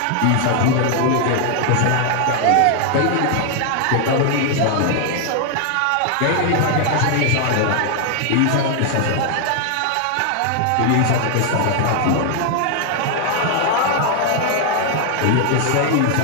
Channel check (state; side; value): different; both; correlation 0.00